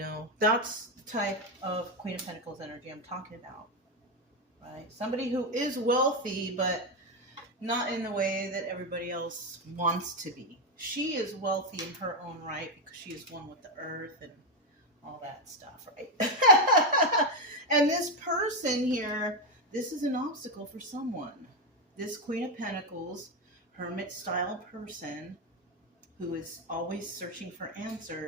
that's the type of Queen of Pentacles energy I'm talking about, right? Somebody who is wealthy, but not in the way that everybody else wants to be. She is wealthy in her own right because she is one with the earth and all that stuff, right? And this person here, this is an obstacle for someone. This Queen of Pentacles, hermit-style person who is always searching for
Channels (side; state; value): both; normal; correlation 0.07